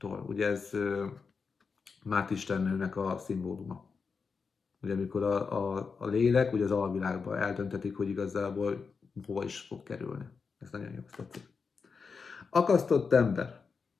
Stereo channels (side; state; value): right; quieter; 5.2 dB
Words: Ugye ez Mát istennőnek a szimbóluma. Ugye amikor a lélek ugye az alvilágban eldöntetik, hogy igazából hova is fog kerülni. Ez nagyon jó, tetszik. Akasztott ember.